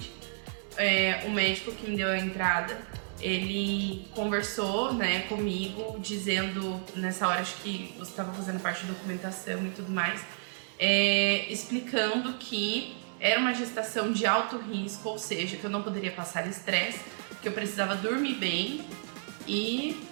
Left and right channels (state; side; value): silent; left; 57 dB below the other